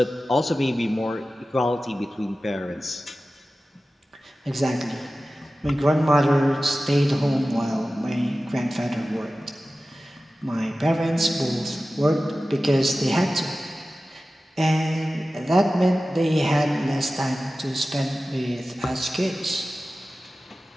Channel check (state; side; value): normal; both; correlation 0.95